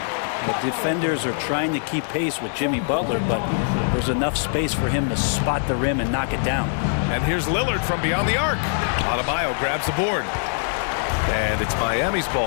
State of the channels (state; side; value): silent; right; digital silence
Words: The defenders are trying to keep pace with Jimmy Butler, but there's enough space for him to spot the rim and knock it down. And here's Lillard from beyond the arc. Adebayo grabs the board. And it's Miami's